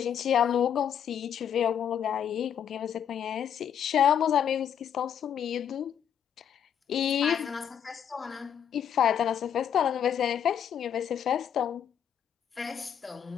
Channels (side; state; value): right; quieter; 8.7 dB